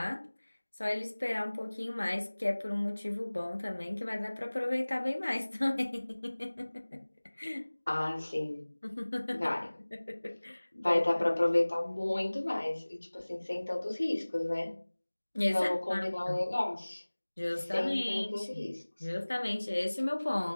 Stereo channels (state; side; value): inverted; both; correlation -1.00